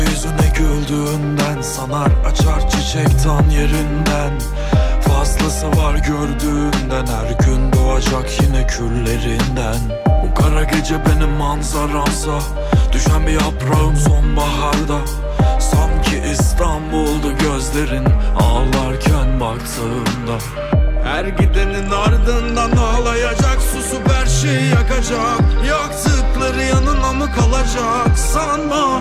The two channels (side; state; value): both; identical; correlation 1.00